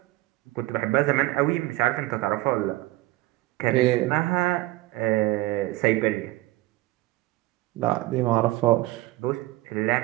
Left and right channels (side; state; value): left; quieter; 18.3 dB